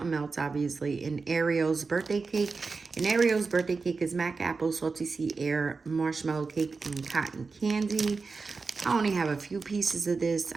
Melts, obviously, and Ariel's birthday cake. And Ariel's birthday cake is mac apple, salty sea air, marshmallow cake, and cotton candy. I only have a few pieces of this.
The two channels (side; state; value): left; quieter; 4.4 dB